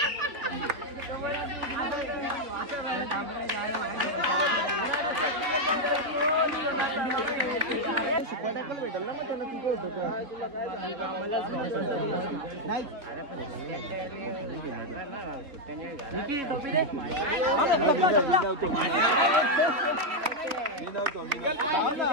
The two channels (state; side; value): late; left; 3.6 ms